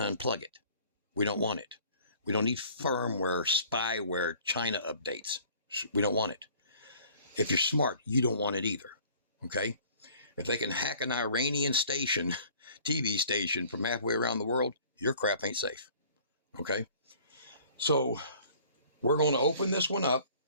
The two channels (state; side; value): inverted; both; correlation -0.52